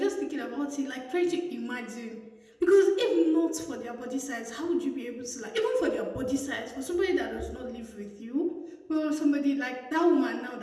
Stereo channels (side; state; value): both; identical; correlation 1.00